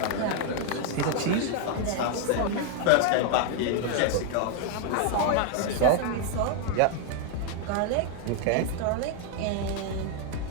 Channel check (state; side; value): different; both; correlation 0.00